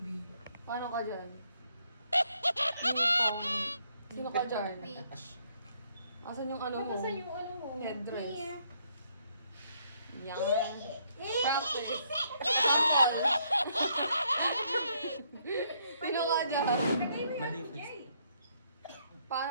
Paano ka dyan? Sino ka dyan? Asan yung ano mo? Asan yung ano mo? Headdress. Yan. Practice. Sample. Sino ka dyan? Maleficent. Paano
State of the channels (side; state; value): both; inverted; correlation -0.71